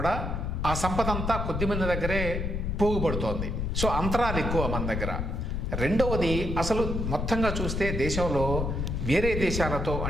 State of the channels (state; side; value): noise; left; rumble, 2 dB below the sound